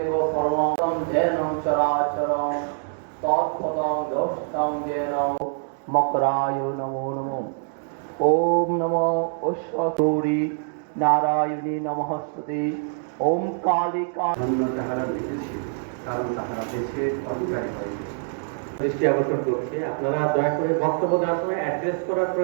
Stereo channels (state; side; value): silent; left; digital silence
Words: পরমং যেন চরাচরং তৎপদং দোষ্টং যেন মকরায় নমো নমো। ওম নমো অশ্বতৌরি নারায়ণী নমস্তুতে। ওম কালিকা তাহারা লিখেছে, কারণ তাহারা দেশে অধিকারী হয়েছে। দৃষ্টি আকর্ষণ করছি, আপনারা দয়া করে বক্তব্য দেওয়ার সময় অ্যাড্রেস করার